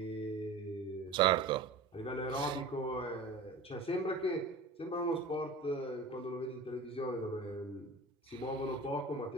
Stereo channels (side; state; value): left; quieter; 3.2 dB